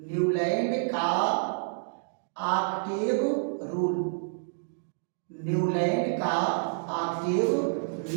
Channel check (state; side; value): silent; left; digital silence